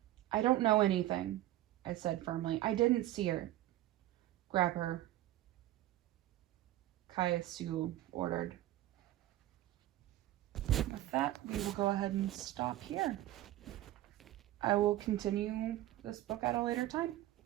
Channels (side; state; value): left; quieter; 14.9 dB